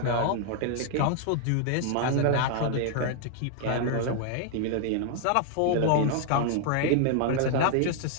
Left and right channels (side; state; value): both; different; correlation 0.00